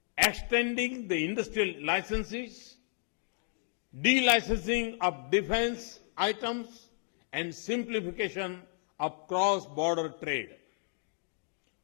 extending the industrial licenses, delicensing of defense items, and simplification of cross-border trade.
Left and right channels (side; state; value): right; silent; 56 dB below the other